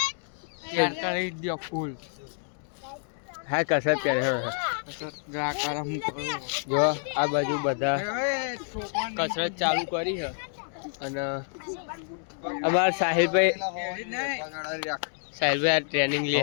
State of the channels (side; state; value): right; silent; digital silence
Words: શેર કરી દો ફૂલ. હા કસરત કરે. જો આ બાજુ બધા કસરત ચાલુ કરી છે. અને અમારા સાહિલભાઈ આ ટ્રેનિંગ લે.